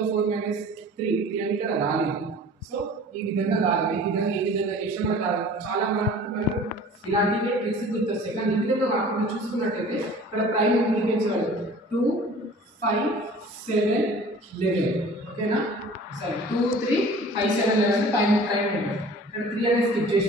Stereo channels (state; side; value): normal; both; correlation 0.45